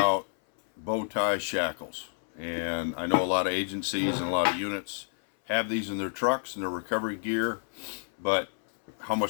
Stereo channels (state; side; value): silent; right; 58 dB below the other